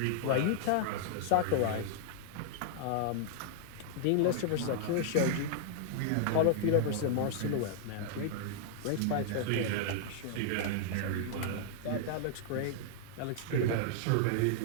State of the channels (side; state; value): both; different; correlation -0.01